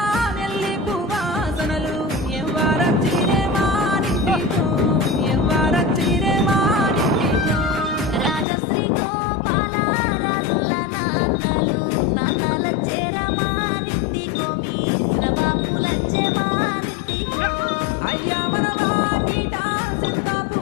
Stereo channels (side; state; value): right; drops out; at 8.5 s